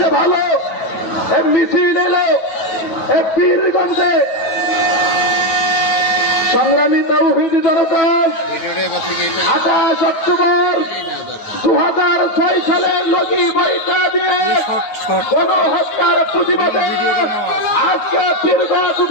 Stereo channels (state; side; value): late; right; 9.5 ms